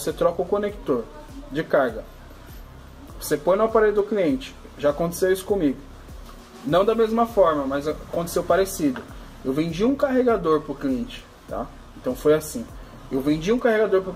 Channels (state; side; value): identical; both; correlation 1.00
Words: troca o conector de carga, você põe no aparelho do cliente. Já aconteceu isso comigo. Não da mesma forma, mas aconteceu parecido. Eu vendi um carregador para o cliente, tá? Então foi assim. Eu vendi um carregador para o